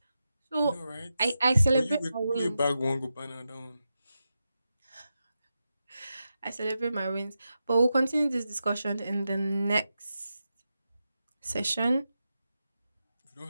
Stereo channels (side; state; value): both; inverted; correlation -0.90